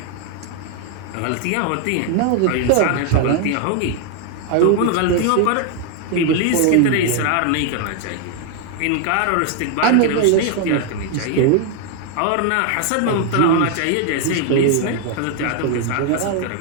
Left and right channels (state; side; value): different; both; correlation 0.00